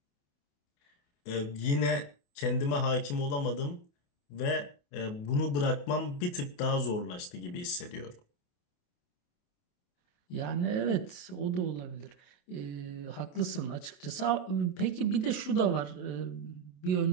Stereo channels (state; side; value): late; right; 28 ms